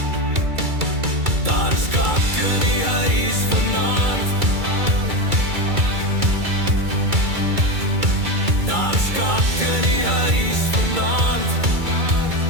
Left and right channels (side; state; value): left; late; 2.3 ms